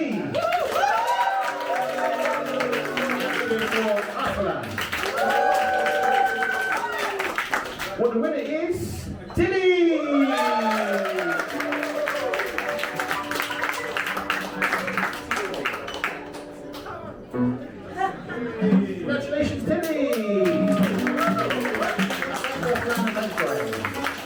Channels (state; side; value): identical; both; correlation 1.00